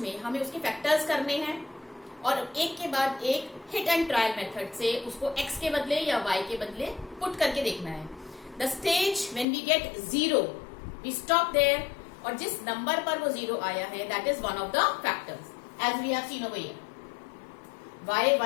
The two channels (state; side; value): drops out; right; at 9.5 s